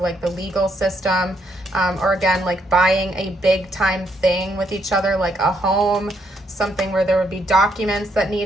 like the legal system, or again, like buying a big time thing with each other, like a home, something where there would be documents that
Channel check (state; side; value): normal; both; correlation 0.74